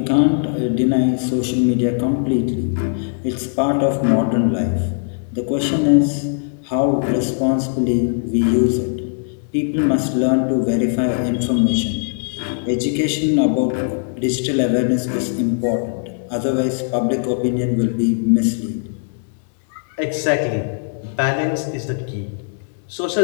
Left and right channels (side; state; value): right; silent; digital silence